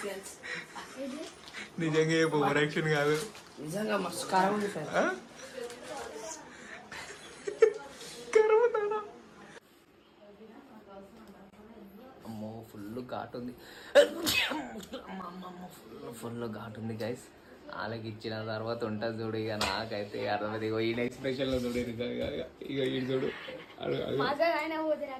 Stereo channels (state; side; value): identical; both; correlation 1.00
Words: నిజంగా ఏ ఓవర్ యాక్షన్ కాదు, నిజంగా మస్తు కారం ఉంది సార్. అమ్మో ఫుల్ ఘాట్ ఉంది, ఫుల్ ఘాట్ ఉంది గైస్. వాళ్ళకి ఇచ్చిన తర్వాత ఉంటుంది చూడు. ఇక నాకైతే అర్థమైంది. ఇగో ఈయన ఎక్స్ప్రెషన్ లో చూడు, ఇక ఈయన చూడు